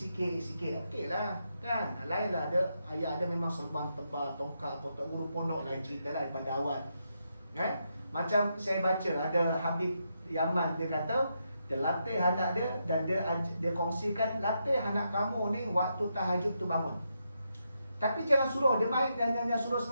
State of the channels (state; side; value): inverted; both; correlation -0.82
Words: okey lah kan. Lain lah ada, ayah ada memang serban tebal, tongkat, tok guru pondok, lain cerita lah daripada awal kan. Macam saya baca ada Habib Yaman, dia kata dia latih anak dia, dan dia kongsikan, latih anak kamu ni waktu tahajud tu bangun, tapi jangan suruh dia main dan jangan suruh